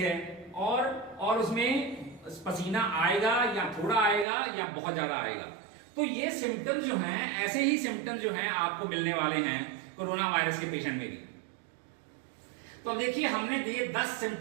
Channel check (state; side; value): drops out; left; at 4.2 s